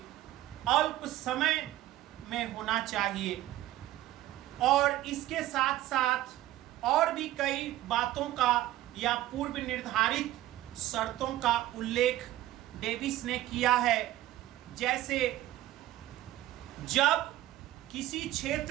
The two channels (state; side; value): quieter; left; 14.9 dB